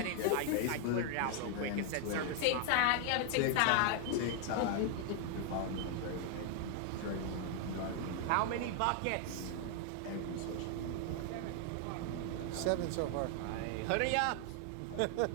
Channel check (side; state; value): both; different; correlation 0.00